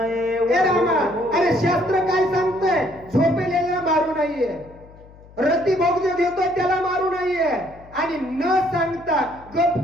ए रामा, अरे शास्त्र काय सांगतंय? झोपेलेला मारू नाहीये, रती भोग देतोय त्याला मारू नाहीये, आणि न सांगता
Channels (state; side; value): noise; left; hum, 22 dB below the sound